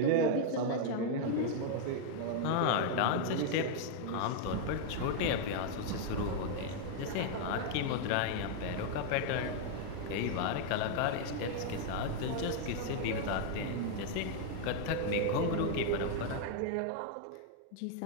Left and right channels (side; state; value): both; different; correlation 0.00